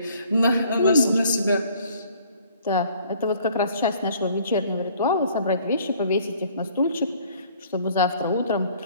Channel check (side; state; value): both; inverted; correlation -0.58